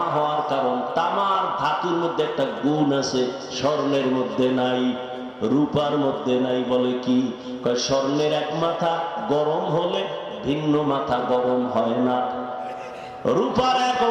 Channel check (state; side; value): identical; both; correlation 1.00